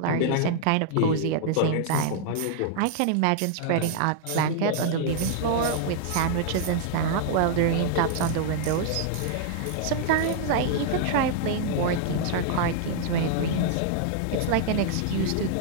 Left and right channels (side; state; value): both; different; correlation -0.01